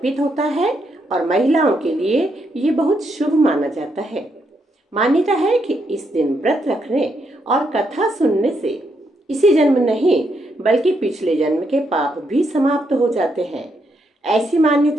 होता है और महिलाओं के लिए ये बहुत शुभ माना जाता है। मान्यता है कि इस दिन व्रत रखने और कथा सुनने से इसी जन्म नहीं बल्कि पिछले जन्म के पाप भी समाप्त हो जाते हैं। ऐसी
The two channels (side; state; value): both; normal; correlation 0.78